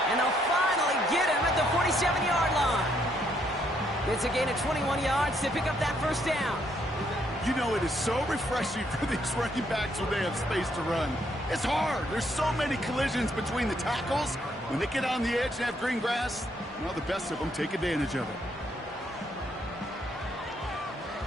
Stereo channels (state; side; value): normal; both; correlation 0.72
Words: And they'll finally get him at the 47-yard line. It's a gain of 21 yards to pick up that first down. You know, it is so refreshing for these running backs when they have space to run. It's hard. There's so many collisions between the tackles. When they get on the edge and have green grass, well, the best of them take advantage of it.